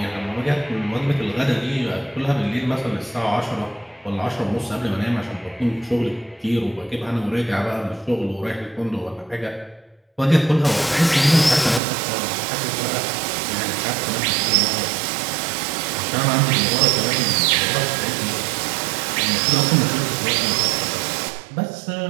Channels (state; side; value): drops out; left; at 11.8 s